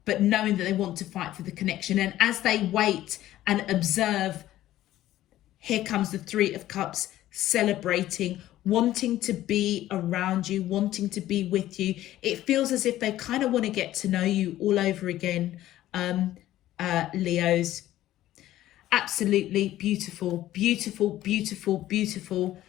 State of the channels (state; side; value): quieter; right; 14.1 dB